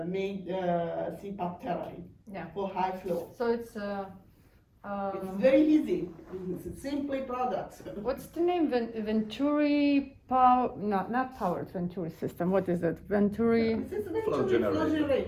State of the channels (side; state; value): both; identical; correlation 1.00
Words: make CPAP therapy for high flow. So it's It's very easy. It's simply products. What's the name? Venturi power? Not powered Venturi system. What is it? Venturi. This is Flow Venturi flow generator.